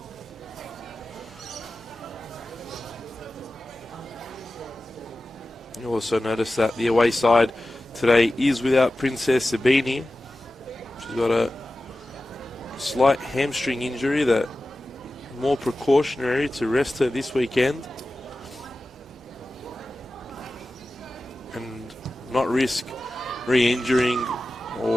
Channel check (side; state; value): both; normal; correlation 0.95